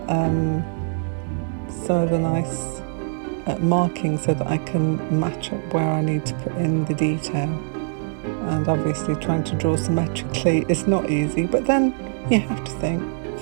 some of the nice marking so that I can match up where I need to put in the detail. And obviously trying to draw symmetrically is not easy, but then you have to think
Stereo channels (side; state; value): left; silent; digital silence